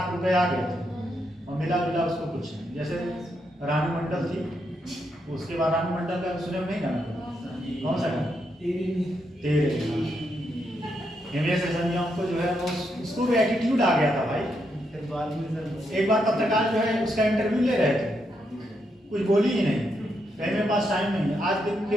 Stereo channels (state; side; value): normal; both; correlation 0.80